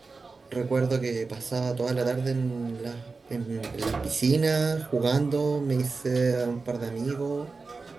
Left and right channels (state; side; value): quieter; left; 4.1 dB